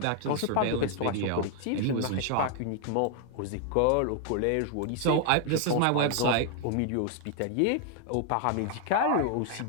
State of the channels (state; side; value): different; both; correlation 0.00